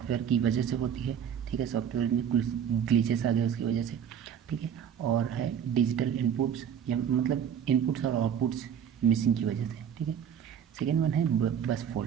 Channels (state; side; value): quieter; left; 8.5 dB